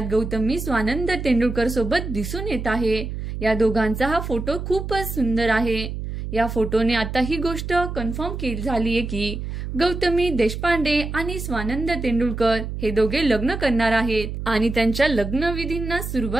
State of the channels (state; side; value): noise; right; hum, 6 dB below the sound